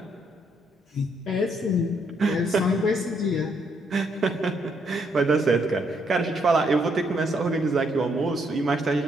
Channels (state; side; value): normal; both; correlation 0.73